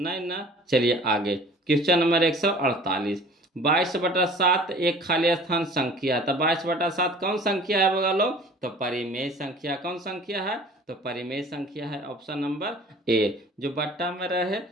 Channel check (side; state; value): both; normal; correlation 0.47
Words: ना। चलिए आगे क्वेश्चन नंबर 148, 22/7 एक खाली स्थान संख्या है। तो 22/7 कौन संख्या है बगा लो, तो परिमेय संख्या, कौन संख्या है, तो परिमेय संख्या है, ऑप्शन नंबर ए, जो बट्टा में रहे,